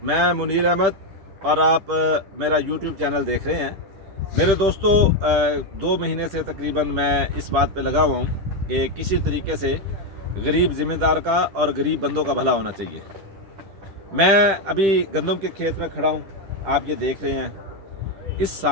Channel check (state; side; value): late; left; 10 ms